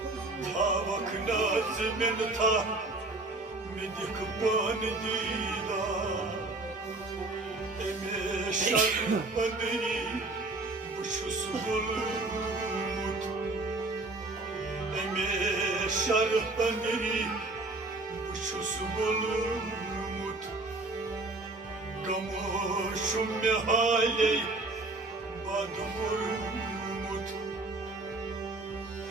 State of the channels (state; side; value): quieter; left; 3.1 dB